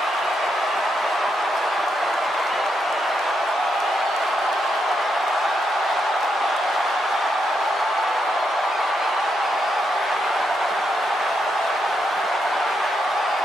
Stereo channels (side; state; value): both; normal; correlation 0.81